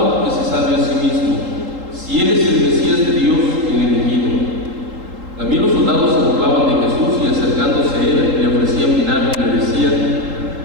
que se salve a sí mismo, si él es el Mesías de Dios, el elegido. También los soldados se burlaban de Jesús y acercándose a él le ofrecían vinagre y le decían:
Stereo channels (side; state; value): left; late; 3.8 ms